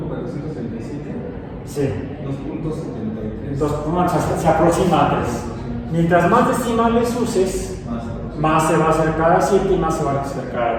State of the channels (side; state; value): both; identical; correlation 1.00